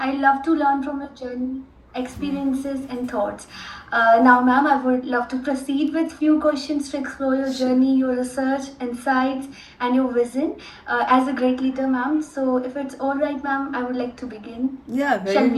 love to learn from your journey, experiences, and thoughts. Now, ma'am, I would love to proceed with few questions to explore your journey, your research, insights, and your vision as a great leader, ma'am. So, if it's all right, ma'am, I would like to begin. Yeah, Shall very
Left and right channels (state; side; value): identical; both; correlation 1.00